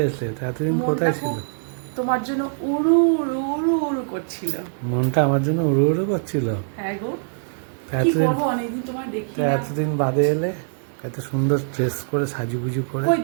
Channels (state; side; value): silent; left; 64 dB below the other